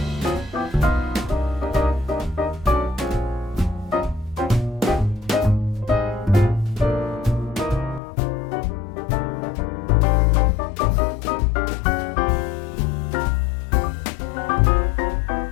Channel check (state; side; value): drops out; right; at 8.0 s